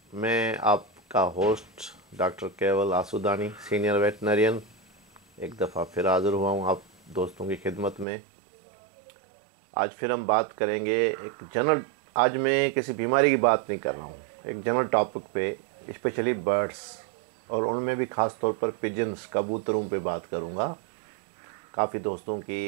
मैं आपका होस्ट डॉक्टर केवल आसूदानी, सीनियर वेटनरियन, एक दफ़ा फिर हाज़िर हुआ हूँ आप दोस्तों की खिदमत में। आज फिर हम बात करेंगे एक जनरल। आज मैं किसी बीमारी की बात नहीं कर रहा हूँ, एक जनरल टॉपिक पे, स्पेशली बर्ड्स और उनमें भी ख़ास तौर पर पिजन्स, कबूतरों पे बात करूँगा। काफ़ी दोस्तों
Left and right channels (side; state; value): left; drops out; at 8.1 s